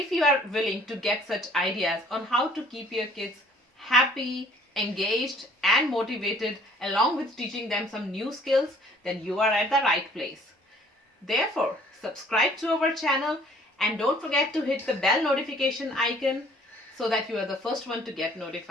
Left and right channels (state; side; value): normal; both; correlation 0.56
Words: you are willing to get such ideas on how to keep your kids happy, engaged, and motivated, along with teaching them some new skills, then you are at the right place. Therefore, subscribe to our channel and don't forget to hit the bell notification icon so that you are the first one to get